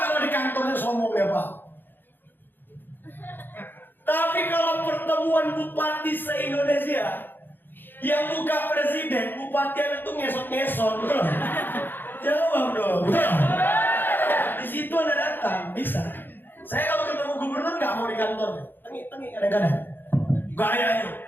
di kantornya sombong ya Pak. Tapi kalau pertemuan bupati se-Indonesia, yang buka presiden, bupati itu ngesot-ngesot, betul? Jawab dong. Betul. Di situ Anda datang, bisa. Saya kalau ketemu gubernur nggak mau di kantor, tengi kadang-kadang. Gayanya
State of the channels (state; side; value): late; right; 0.095 ms